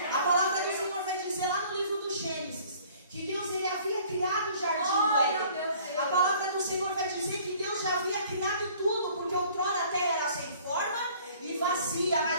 palavra do Senhor vai dizer lá no livro do Gênesis que Deus, ele havia criado o jardim do Éden. A palavra do Senhor vai dizer que Deus já havia criado tudo, porque outrora a terra era sem forma e vazia,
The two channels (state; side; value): inverted; both; correlation -0.54